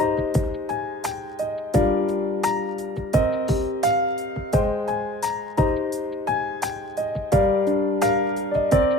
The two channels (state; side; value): normal; both; correlation 0.48